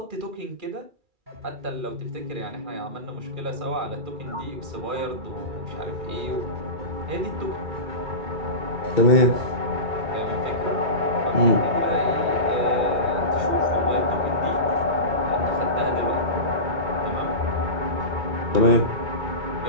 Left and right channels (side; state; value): left; late; 2.4 ms